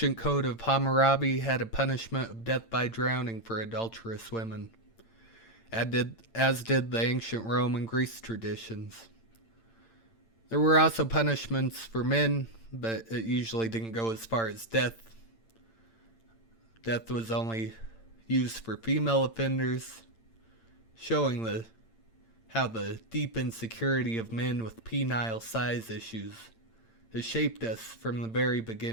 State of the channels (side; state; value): right; late; 8.8 ms